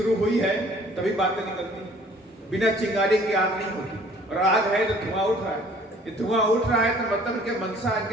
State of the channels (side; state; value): both; normal; correlation 0.55